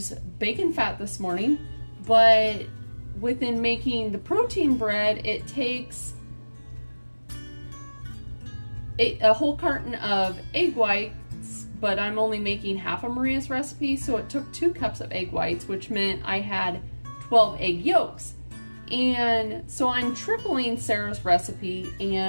bacon fat this morning, but within making the protein bread, it takes a whole carton of egg whites, but I'm only making half of Maria's recipe, so it took 2 cups of egg whites, which meant I had 12 egg yolks. And so I'm tripling Sarah's recipe,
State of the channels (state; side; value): inverted; both; correlation -1.00